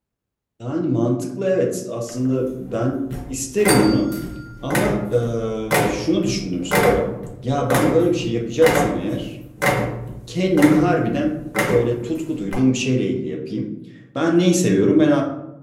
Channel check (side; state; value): both; identical; correlation 1.00